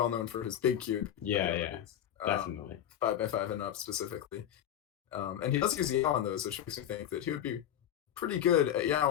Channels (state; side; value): quieter; right; 10.5 dB